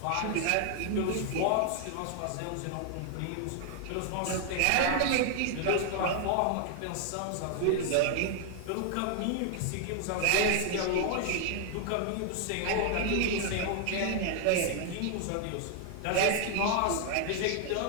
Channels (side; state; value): both; different; correlation 0.00